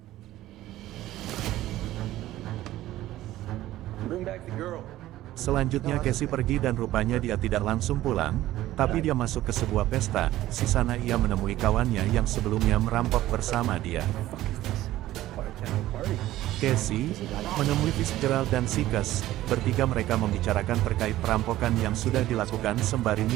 Selanjutnya Casey pergi dan rupanya dia tidak langsung pulang, tapi dia masuk ke sebuah pesta. Di sana ia menemui kawannya yang sebelumnya merampok bersama dia. Party. Casey menemui Fitzgerald dan Sikes. Bertiga mereka membicarakan terkait perampokan yang sudah dilakukan sembari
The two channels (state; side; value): quieter; left; 15.0 dB